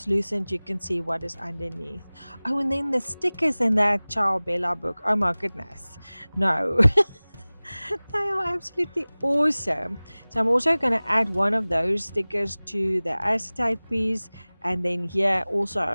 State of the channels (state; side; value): inverted; both; correlation -1.00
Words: You can see what is underneath. Oh, and then the stickers in that Ciao Bella book. Oh my goodness. No. They are absolutely awesome. So I'm also going to add one of those stickers to the acetate piece. And then here